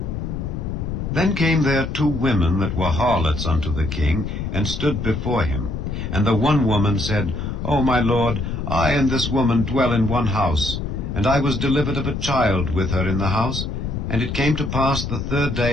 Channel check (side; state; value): left; noise; rumble, 4 dB below the sound